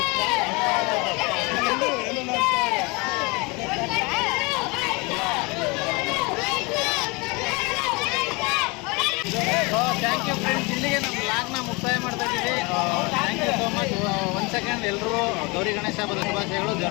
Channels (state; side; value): quieter; right; 27.3 dB